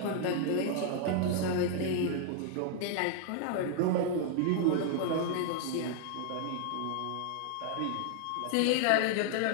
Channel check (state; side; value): different; both; correlation 0.00